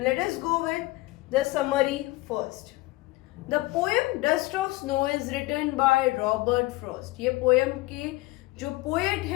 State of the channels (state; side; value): quieter; right; 20.2 dB